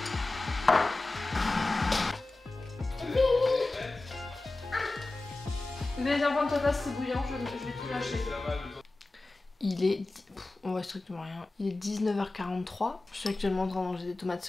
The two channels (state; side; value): quieter; right; 3.0 dB